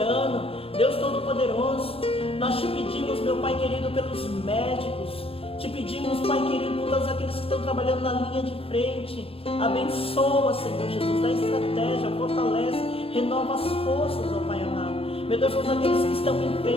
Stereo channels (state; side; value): late; right; 0.27 ms